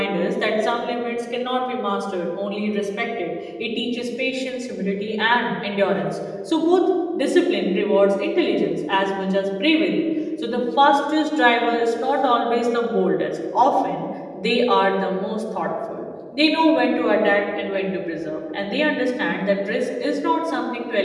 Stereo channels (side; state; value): both; identical; correlation 1.00